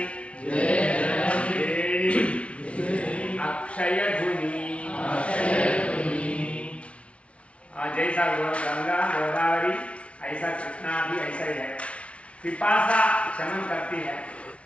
अक्षयधुनि। जैसा गंगा गोदावरी ऐसा कृष्णा भी ऐसा ही है। पिपासा शमन करती है,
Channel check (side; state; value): right; late; 0.062 ms